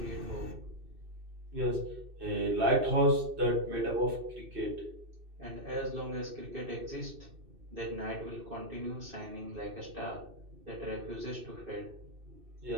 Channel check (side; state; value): left; late; 2.6 ms